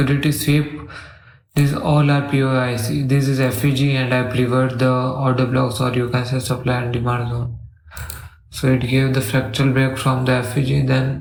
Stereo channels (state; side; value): identical; both; correlation 1.00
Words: these all are POIC. This is FEG and I preferred the order blocks, or you can say supply and demand zone. So it gave the fractal break from the FEG,